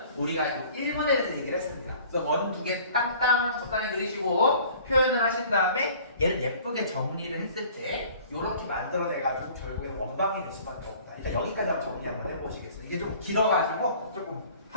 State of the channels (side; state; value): both; inverted; correlation -0.50